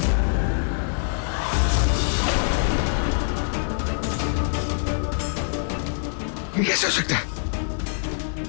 ये कैसे हो सकता है?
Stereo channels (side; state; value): right; silent; 62 dB below the other